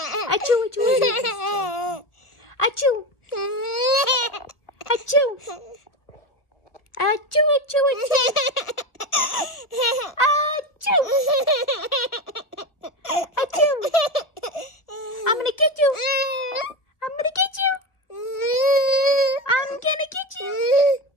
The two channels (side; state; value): right; late; 1.3 ms